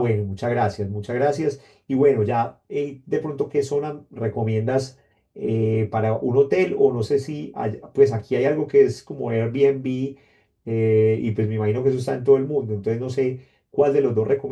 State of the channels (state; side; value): identical; both; correlation 1.00